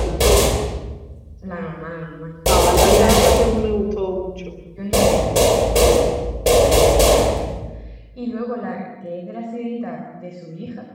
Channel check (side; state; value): both; identical; correlation 1.00